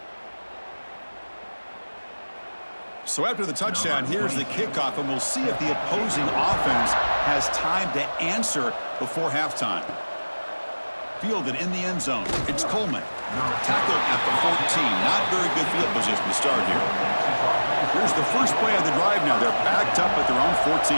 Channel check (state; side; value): inverted; both; correlation -1.00